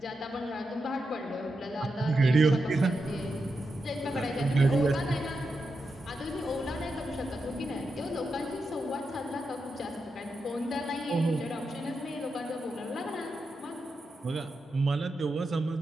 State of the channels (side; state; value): both; normal; correlation 0.87